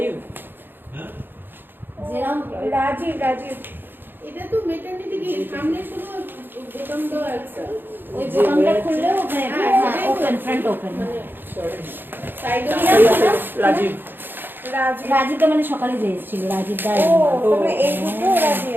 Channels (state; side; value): late; left; 0.097 ms